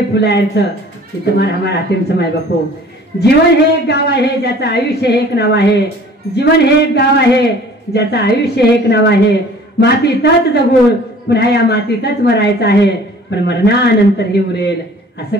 फुलायचं ते तुम्हाला हमारा हातीम माय बापो जीवन हे एक गाव आहे ज्याचं आयुष्य हे एक नाव आहे जीवन हे एक गाव आहे ज्याचं आयुष्य हे एक नाव आहे मातीतच जगून पुन्हा या मातीतच मरायचं आहे पण मरणानंतर हे उरेल असं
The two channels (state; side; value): normal; both; correlation 0.49